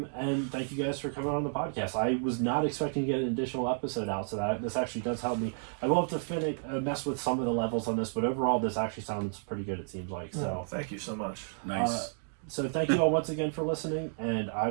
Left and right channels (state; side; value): silent; left; digital silence